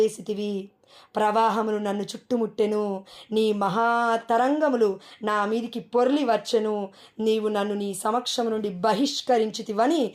ప్రవాహములు నన్ను చుట్టుముట్టెను, నీ మహాతరంగములు నా మీదికి పొర్లి వచ్చెను, నీవు నన్ను నీ సమక్షము నుండి బహిష్కరించితివని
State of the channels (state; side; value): identical; both; correlation 1.00